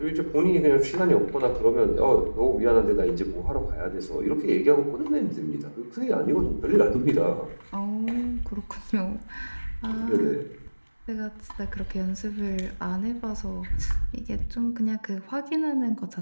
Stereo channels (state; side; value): inverted; both; correlation -1.00